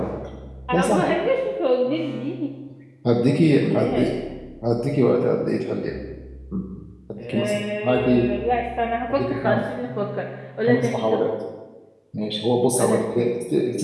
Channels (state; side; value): identical; both; correlation 1.00